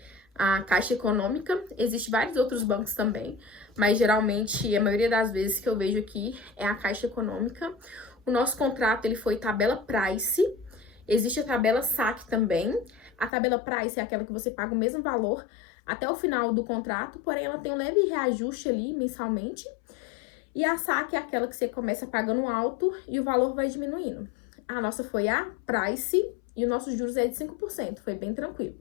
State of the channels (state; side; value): drops out; right; at 13.3 s